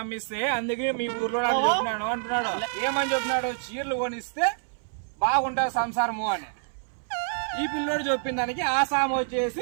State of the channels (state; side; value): silent; left; 60 dB below the other